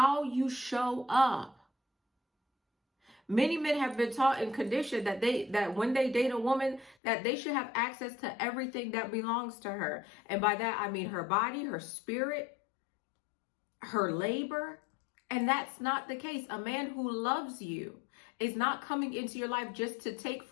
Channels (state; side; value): drops out; right; at 7.0 s